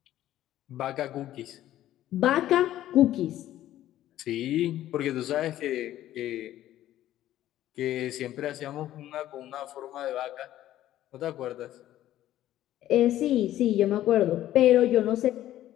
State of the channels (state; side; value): quieter; right; 13.3 dB